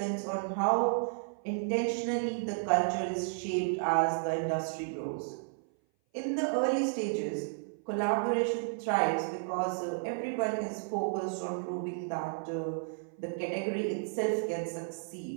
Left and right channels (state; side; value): silent; left; 56 dB below the other